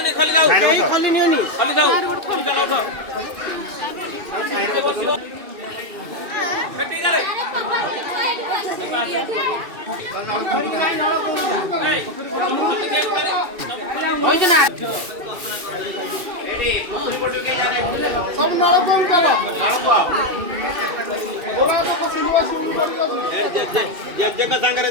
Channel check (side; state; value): left; late; 2.6 ms